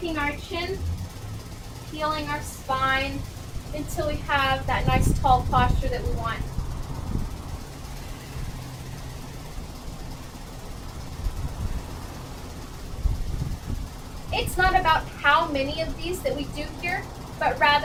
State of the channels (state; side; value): identical; both; correlation 1.00